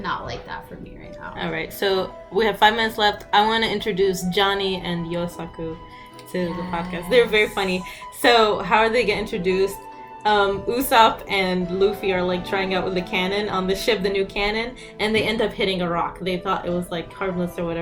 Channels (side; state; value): both; identical; correlation 1.00